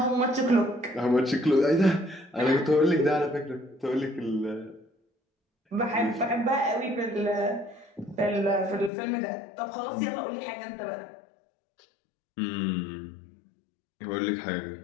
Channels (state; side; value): drops out; right; at 8.9 s